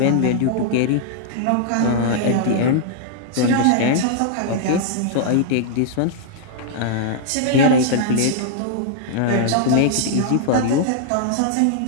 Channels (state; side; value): different; both; correlation -0.01